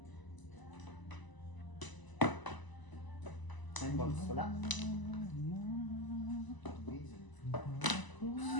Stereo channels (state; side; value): late; right; 1.0 ms